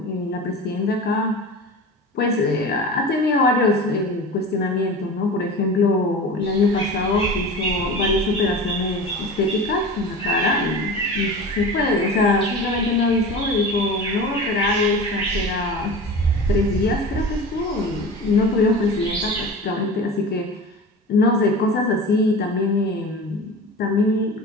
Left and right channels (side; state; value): both; normal; correlation 0.33